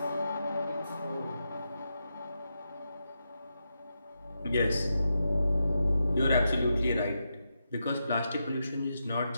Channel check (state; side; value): inverted; both; correlation -0.86